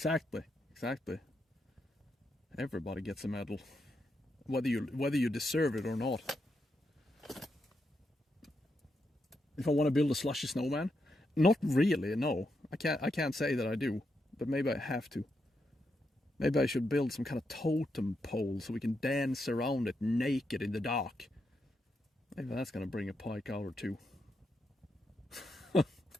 Everybody gets a medal, whether you deserve it or not. If I want to build a slushy snowman, not really. No, I can't say that I do, but maybe I have to. Maybe I should build some kind of totem pole so we can dance around it naked in the dark. Maybe that's gonna bring a pike out or two.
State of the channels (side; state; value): both; normal; correlation 0.83